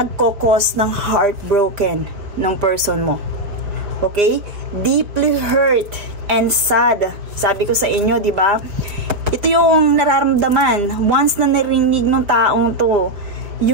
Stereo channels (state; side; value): late; left; 4.8 ms